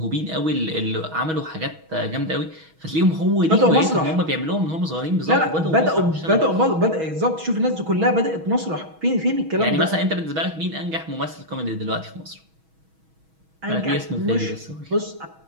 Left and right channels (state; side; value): late; left; 6.2 ms